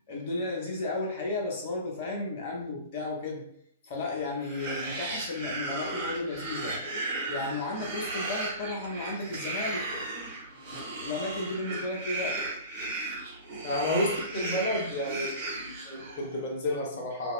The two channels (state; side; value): inverted; both; correlation -0.37